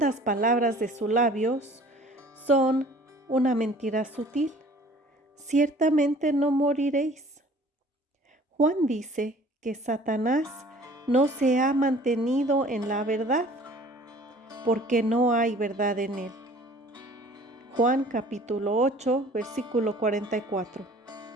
palabras de sus labios son una mentira sutil: ciertamente no moriréis. Juan dice que Satanás no se ha mantenido en la verdad, porque no hay verdad en él. Juan capítulo 8, versículo 44.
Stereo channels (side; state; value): both; normal; correlation 0.51